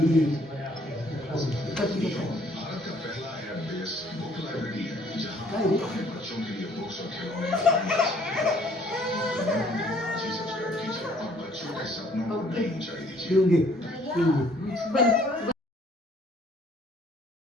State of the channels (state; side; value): normal; both; correlation 0.61